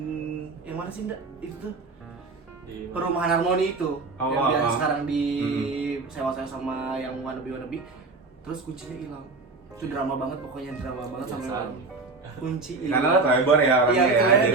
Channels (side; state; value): left; quieter; 3.7 dB